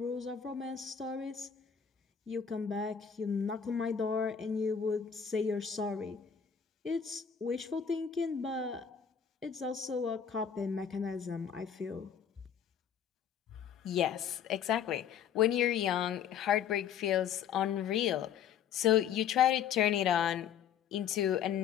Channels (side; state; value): right; quieter; 8.0 dB